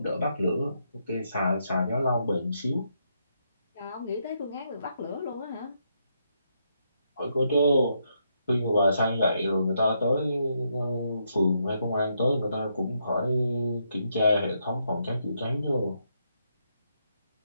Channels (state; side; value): inverted; both; correlation -0.78